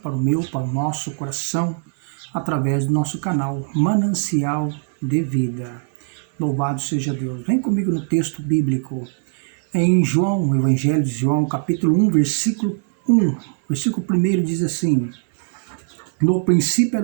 o meu, para o nosso coração, através do nosso canal Manancial de Vida. Louvado seja Deus. Vem comigo no texto bíblico. Em João, o Evangelho de João, capítulo 1, versículo 1. Versículo 1 diz assim: No princípio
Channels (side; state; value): left; silent; 62 dB below the other